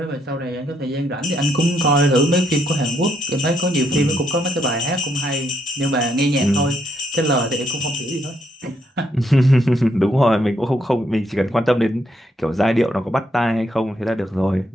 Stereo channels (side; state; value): both; normal; correlation 0.74